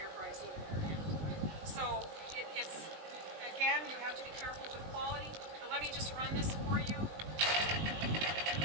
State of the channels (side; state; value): left; late; 20 ms